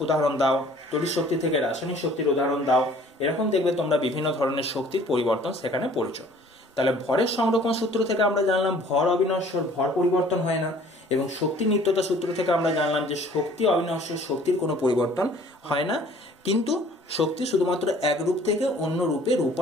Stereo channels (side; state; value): both; normal; correlation 0.53